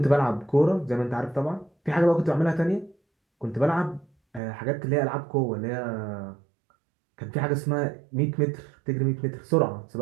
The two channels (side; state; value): left; drops out; at 4.4 s